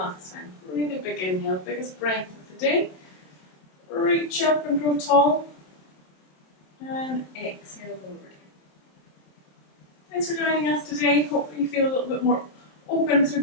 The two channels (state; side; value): late; right; 27 ms